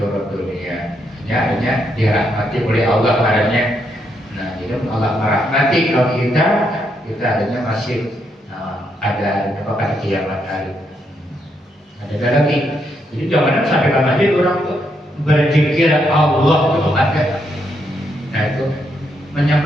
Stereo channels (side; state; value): both; normal; correlation 0.77